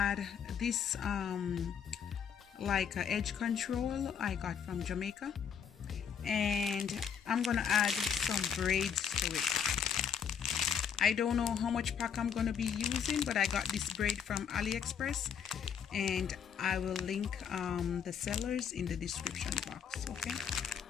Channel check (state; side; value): quieter; right; 7.5 dB